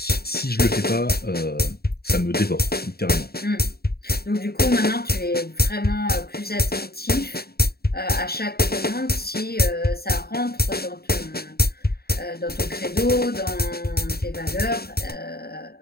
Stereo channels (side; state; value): right; late; 0.45 ms